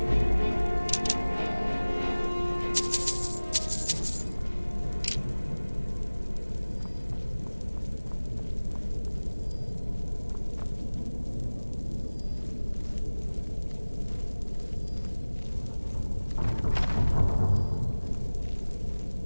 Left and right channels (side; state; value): both; inverted; correlation -1.00